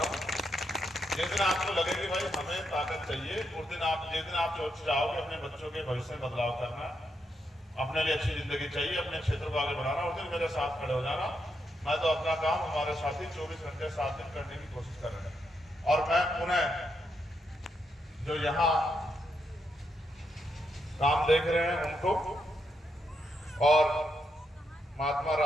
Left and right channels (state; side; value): normal; both; correlation 0.81